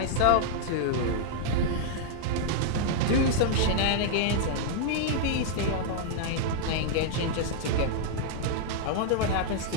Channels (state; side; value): different; both; correlation -0.01